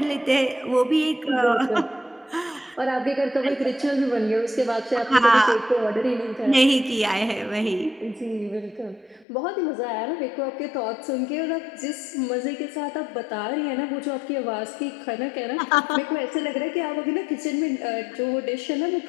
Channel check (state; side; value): drops out; right; at 9.2 s